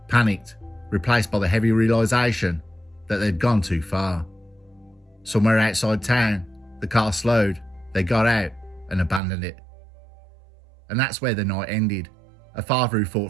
panicked, replaced by the heavy realisation that they'd gone too far. Somewhere outside town, the car slowed, they got out and abandoned it. And that's where the night ended. A father who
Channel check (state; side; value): drops out; left; at 9.2 s